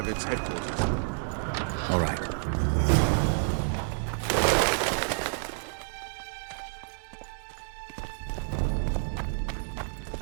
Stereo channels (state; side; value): silent; left; digital silence